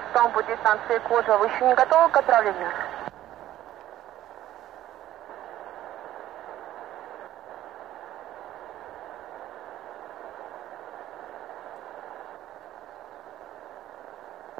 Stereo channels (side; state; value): left; quieter; 13.4 dB